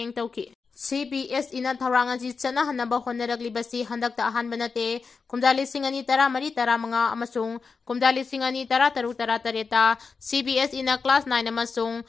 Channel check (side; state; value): right; quieter; 4.9 dB